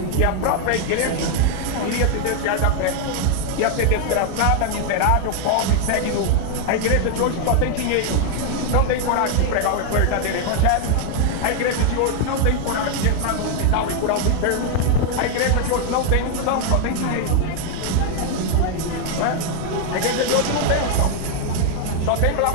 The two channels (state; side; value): different; both; correlation 0.00